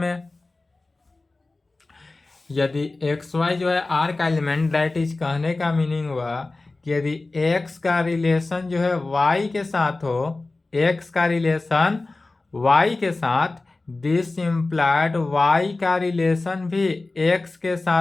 यदि x y जो है r का एलिमेंट, दैट इज कहने का मीनिंग हुआ कि यदि x का रिलेशन जो है y के साथ हो, x का रिलेशन y के साथ, दिस इम्प्लाइड y का रिलेशन भी x के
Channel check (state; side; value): quieter; right; 3.3 dB